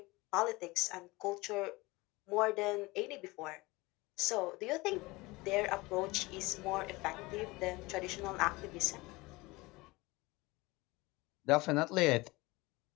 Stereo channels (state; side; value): quieter; right; 22.3 dB